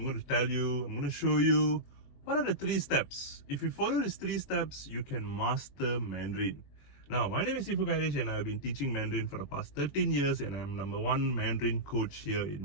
going to show you what are the 3 steps. If you follow these 3 steps, you can master Mandarin. Now, my name is Sifu Kairesh and I've been teaching Mandarin for the past 13 years and I'm #1 Mandarin coach here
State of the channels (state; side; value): late; right; 21 ms